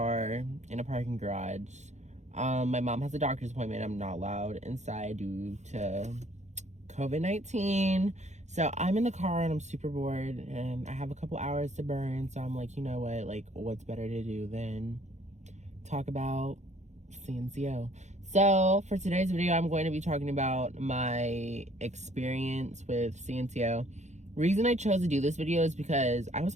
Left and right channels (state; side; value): late; left; 0.33 ms